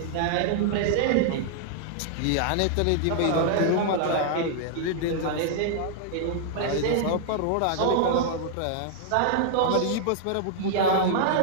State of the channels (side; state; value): both; different; correlation -0.01